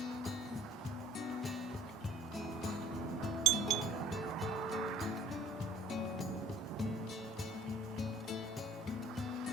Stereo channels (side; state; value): both; normal; correlation 0.54